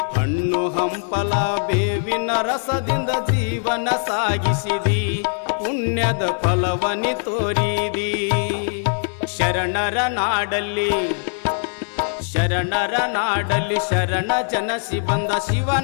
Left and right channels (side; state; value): right; silent; digital silence